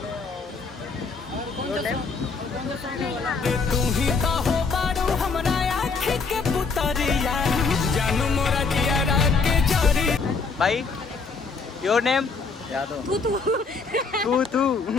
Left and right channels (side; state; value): right; quieter; 4.6 dB